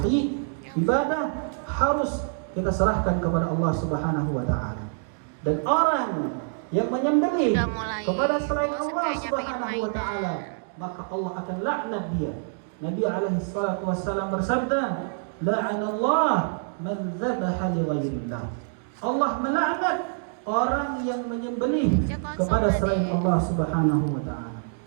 Ibadah harus kita serahkan kepada Allah Subhanahu wa taala. Dan orang yang menyembelih kepada selain Allah Subhanahu wa taala, maka Allah akan laknat dia. Nabi alaihi salatu wassalam bersabda, "La'anallah man dzabaha li ghairillah." Allah melaknat orang yang menyembelih kepada selain Allah Subhanahu wa taala.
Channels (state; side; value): silent; left; digital silence